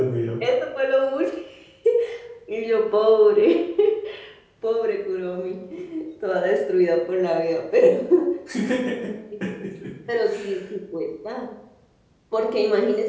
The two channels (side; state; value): both; identical; correlation 1.00